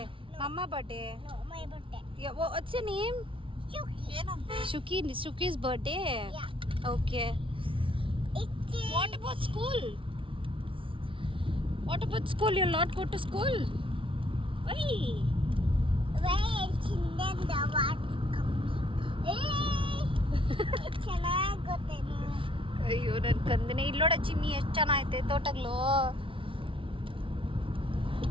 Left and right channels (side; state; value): left; late; 0.25 ms